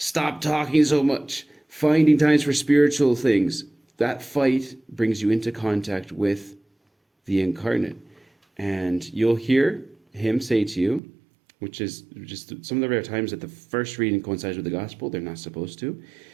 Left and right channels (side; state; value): left; drops out; at 11.0 s